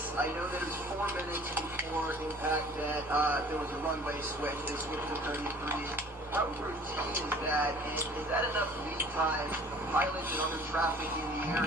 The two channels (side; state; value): both; normal; correlation 0.50